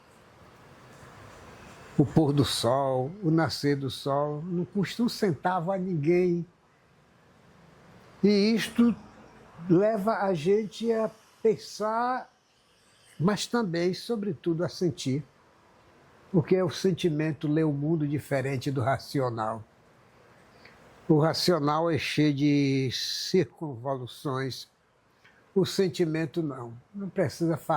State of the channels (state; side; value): identical; both; correlation 1.00